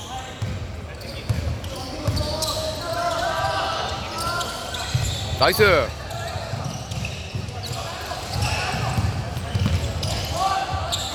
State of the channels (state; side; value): identical; both; correlation 1.00